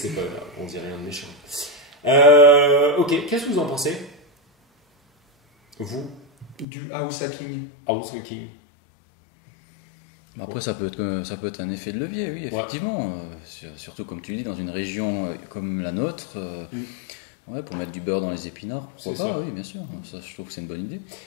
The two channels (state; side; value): drops out; right; at 6.7 s